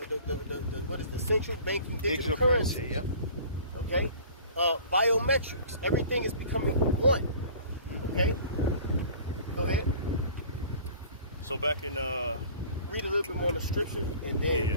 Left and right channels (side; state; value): both; inverted; correlation -0.46